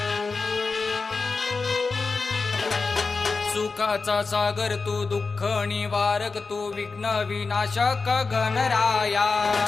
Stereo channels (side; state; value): right; quieter; 4.3 dB